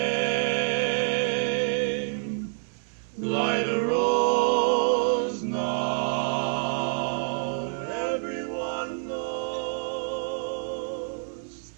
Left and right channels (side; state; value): left; silent; 60 dB below the other